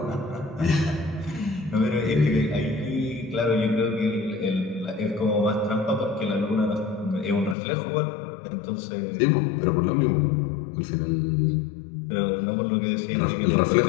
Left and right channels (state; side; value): drops out; right; at 7.6 s